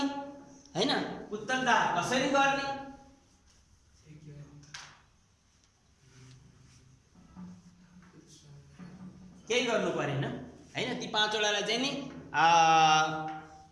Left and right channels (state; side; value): identical; both; correlation 1.00